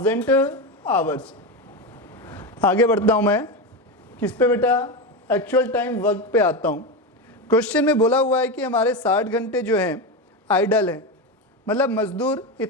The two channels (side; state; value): both; normal; correlation 0.16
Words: आवर्स। आगे बढ़ता हूँ मैं, किस पे बेटा, एक्चुअल टाइम वर्क पे आता हूँ। क्वेश्चन में बोला हुआ है कि हमारे 60 घंटे जो हैं आइडल हैं, मतलब मजदूर